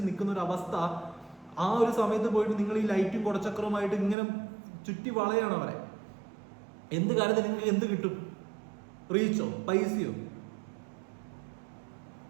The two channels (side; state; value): left; drops out; at 4.2 s